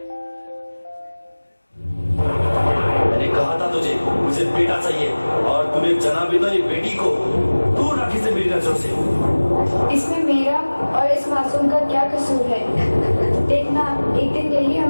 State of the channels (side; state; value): both; inverted; correlation -1.00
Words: मैंने कहा था तुझे मुझे बेटा चाहिए और तूने जना भी तो एक बेटी को दूर रखी से मेरी नजरों से. इसमें मेरा और इस मासूम का क्या कसूर है? देखना, एक दिन यही